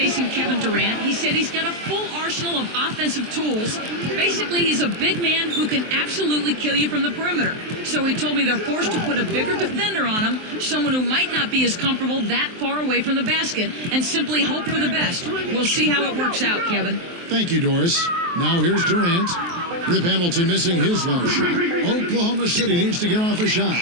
Kevin Durant, he said he's got a full arsenal of offensive tools. Basically, he's a big man who can absolutely kill you from the perimeter. So he told me they're forced to put a bigger defender on him, someone who might not be as comfortable that far away from the basket, and simply hope for the best. We'll see how it works out, Kevin. Thank you, Doris. Now here's Durant. Rip Hamilton missing his last shot. Oklahoma City needs to get off a shot.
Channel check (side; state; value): left; late; 23 ms